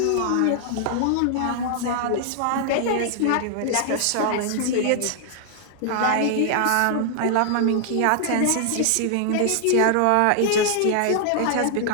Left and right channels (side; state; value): both; different; correlation 0.00